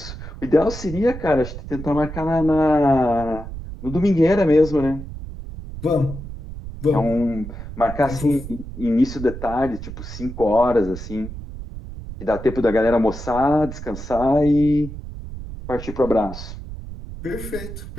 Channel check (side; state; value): right; noise; rumble, 10 dB below the sound